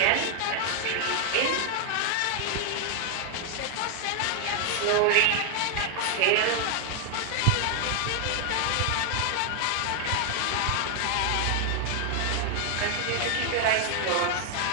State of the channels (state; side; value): different; both; correlation 0.00